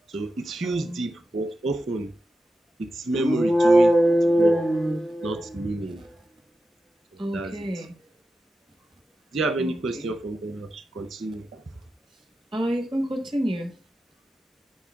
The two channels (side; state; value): both; normal; correlation 0.91